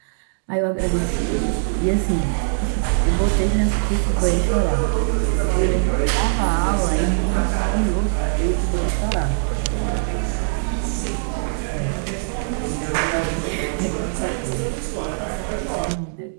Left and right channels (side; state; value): left; silent; digital silence